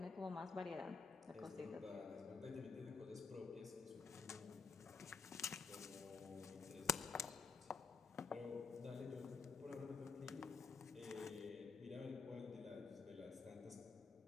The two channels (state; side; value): quieter; right; 5.0 dB